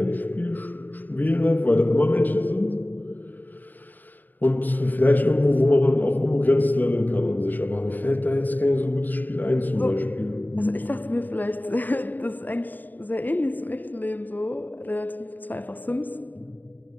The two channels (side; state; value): right; late; 0.087 ms